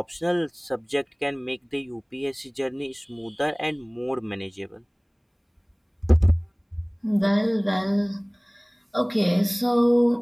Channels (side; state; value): both; identical; correlation 1.00